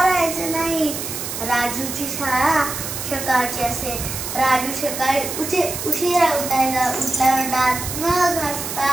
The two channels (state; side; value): noise; right; hiss, 6 dB below the sound